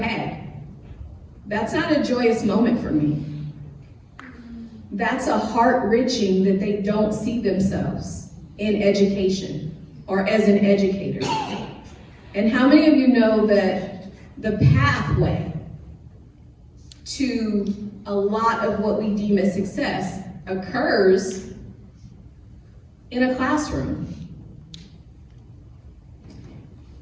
that's not a joyous moment for me. That's a heart-wrenching that they don't see themselves in education or as an educator. And how many of you know that the pathway to a lot of what we deem as success occurs in a classroom?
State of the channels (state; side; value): identical; both; correlation 1.00